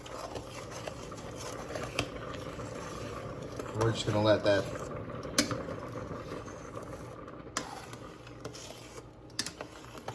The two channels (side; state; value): both; identical; correlation 1.00